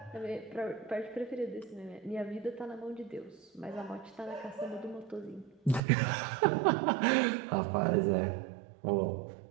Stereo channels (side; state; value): left; drops out; at 5.8 s